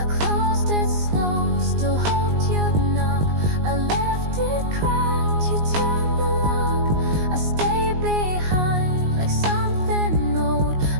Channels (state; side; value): late; left; 19 ms